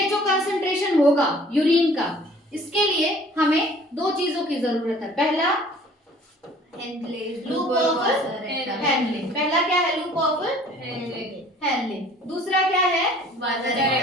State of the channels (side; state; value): both; normal; correlation 0.52